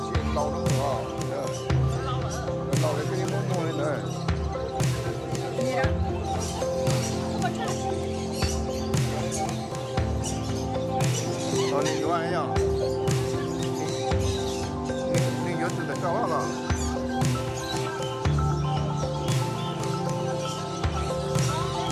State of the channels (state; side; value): identical; both; correlation 1.00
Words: chuyện lâu lắm rồi, lâu đấy cái món mua lên rồi. Còn đi qua ấy nhở? Đi nhớ từ tại sao hả?